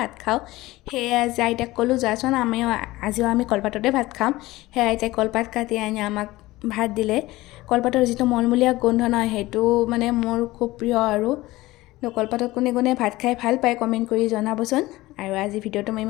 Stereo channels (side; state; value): right; quieter; 18.6 dB